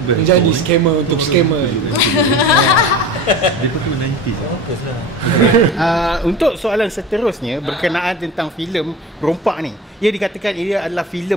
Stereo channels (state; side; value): normal; both; correlation 0.33